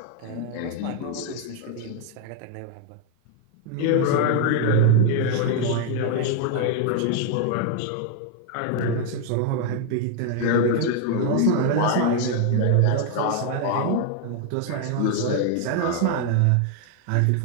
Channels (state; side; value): different; both; correlation 0.00